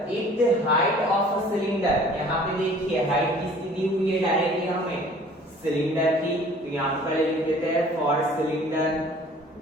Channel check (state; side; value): normal; both; correlation 0.51